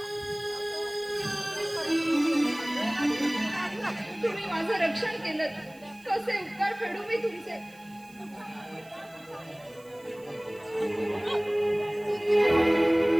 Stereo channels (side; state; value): right; noise; hiss, 26 dB below the sound